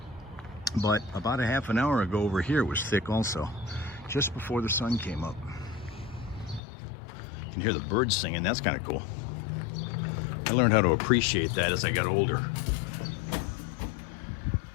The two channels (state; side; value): drops out; right; at 6.6 s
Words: But about a half an hour ago over here it was thick also, just before the sun came up. You can hear the birds singing. That's kind of cool. I learned how to appreciate that as I got older.